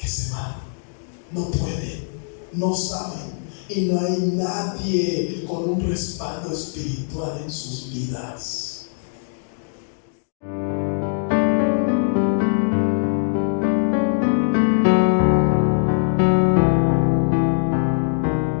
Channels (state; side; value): silent; right; digital silence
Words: se van. No pueden, no saben. Y no hay nadie con un respaldo espiritual en sus vidas.